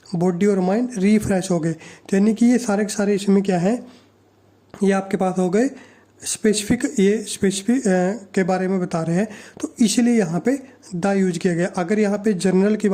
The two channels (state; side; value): identical; both; correlation 1.00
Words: बॉडी और माइंड रिफ्रेश हो गए। तो यानी कि ये सारे के सारे इसमें क्या है, ये आपके पास हो गए स्पेसिफिक, ये स्पेसिफिक के बारे में बता रहे हैं, तो इसलिए यहाँ पे द यूज किया गया। अगर यहाँ पे जनरल की